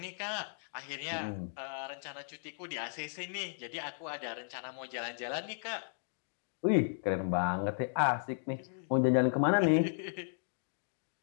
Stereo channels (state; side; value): silent; right; digital silence